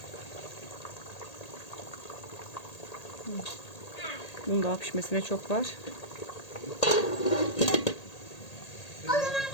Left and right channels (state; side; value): late; right; 1.8 ms